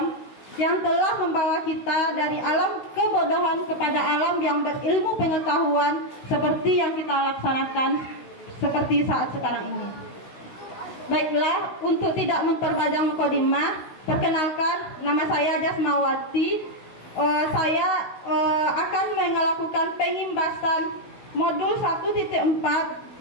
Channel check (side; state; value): right; late; 16 ms